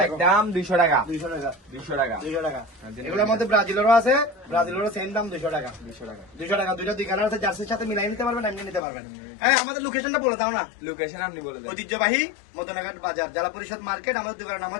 একদম 200 টাকা। 200 টাকা। 200 টাকা। 200 টাকা। এগুলোর মধ্যে ব্রাজিলেরও আছে। ব্রাজিলেরও সেম দাম 200 টাকা। 200 টাকা। 200 টাকা। দুইটা দুই কালার আছে। জার্সির সাথে মিলাই নিতে পারবেন, এমনি নিতে পারবেন। হ্যাঁ, আমাদের লোকেশনটা বলে দাও না। লোকেশন আপনি বলে দেন। ঐতিহ্যবাহী মদনাঘাট বাজার, জেলা পরিষদ মার্কেট। আমাদের দোকানের নাম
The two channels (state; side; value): drops out; right; at 8.8 s